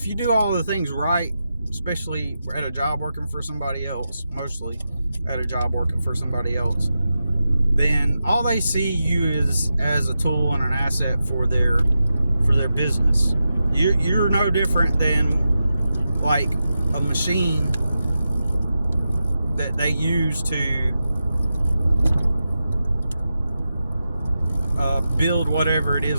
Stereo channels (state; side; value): inverted; both; correlation -0.90